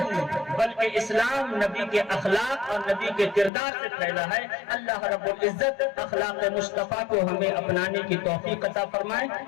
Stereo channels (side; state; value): right; drops out; at 3.5 s